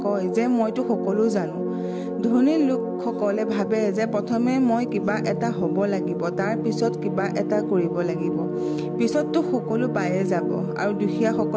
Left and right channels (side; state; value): both; identical; correlation 1.00